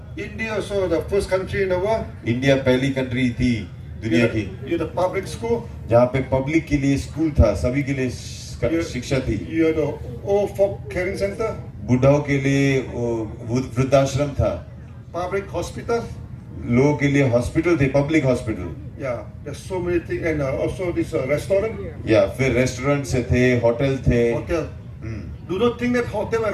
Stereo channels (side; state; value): both; identical; correlation 1.00